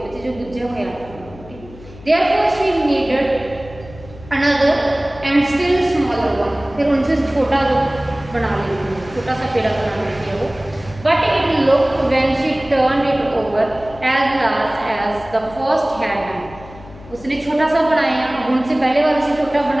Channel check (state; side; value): noise; left; hum, 19 dB below the sound